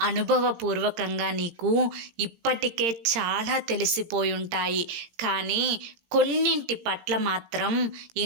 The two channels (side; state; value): left; late; 17 ms